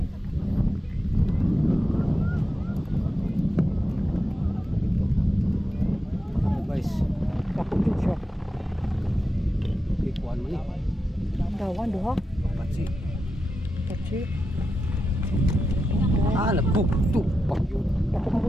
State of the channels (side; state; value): both; normal; correlation 0.89